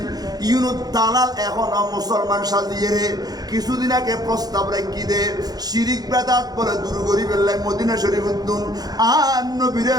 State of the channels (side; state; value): left; late; 0.19 ms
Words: ইউনুদ দালাল এখন মুসলমান সাজিয়ে রে কিছুদিন আগে প্রস্তাব রাখি দে শিরিক বেদাত বলে দূর করি ফেললাই মদিনা শরীফ উদ্দুন আর নবীরে